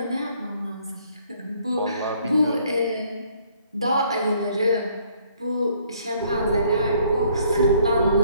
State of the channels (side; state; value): both; inverted; correlation -0.63